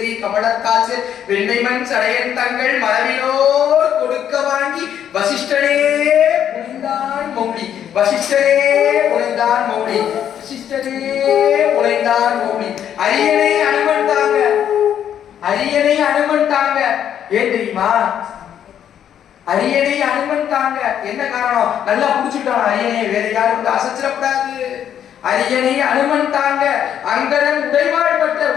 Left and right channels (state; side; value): quieter; right; 9.6 dB